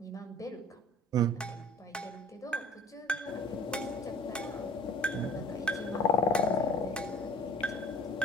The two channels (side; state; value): both; normal; correlation 0.50